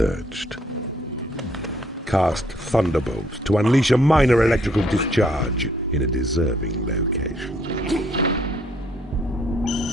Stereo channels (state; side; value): normal; both; correlation 0.66